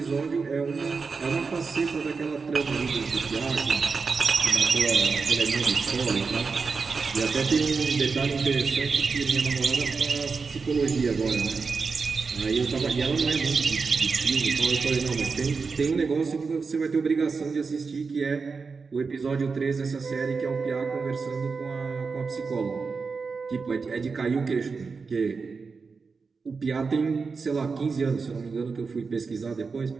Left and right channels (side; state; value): left; quieter; 4.8 dB